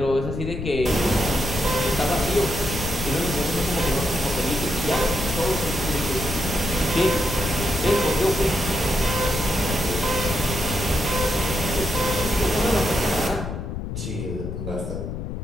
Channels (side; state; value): left; noise; rumble, 6 dB below the sound